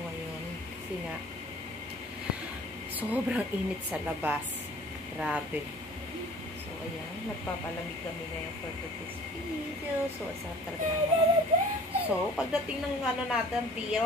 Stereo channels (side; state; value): both; normal; correlation 0.48